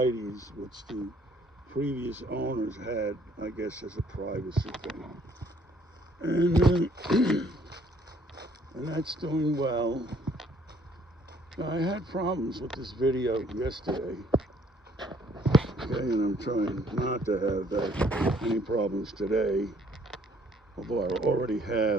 which the previous owners had, I guess, as a privacy thing. And and that's doing well. Now, I had problems with this video yesterday, okay, and I'm trying not to have any problems today, although I already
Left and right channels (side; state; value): both; normal; correlation 0.62